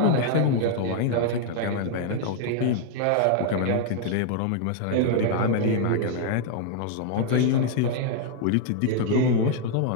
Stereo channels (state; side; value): different; both; correlation 0.00